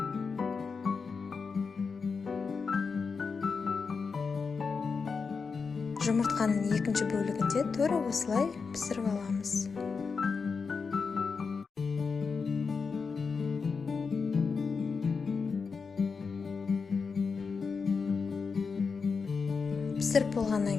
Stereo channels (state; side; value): quieter; right; 5.1 dB